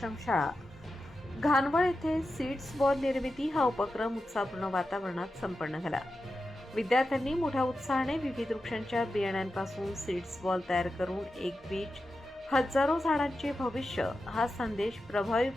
घानवळ येथे सीड्स बॉल निर्मिती हा उपक्रम उत्साहपूर्ण वातावरणात संपन्न झाला। विद्यार्थ्यांनी मोठ्या उत्साहाने विविध वृक्षांच्या बियाण्यांपासून सीड्स बॉल तयार करून एक बीज हजारो झाडांचे भविष्य हा संदेश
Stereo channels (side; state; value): both; normal; correlation 0.91